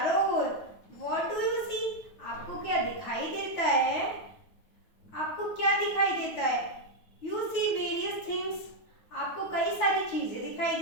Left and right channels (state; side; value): late; right; 9.3 ms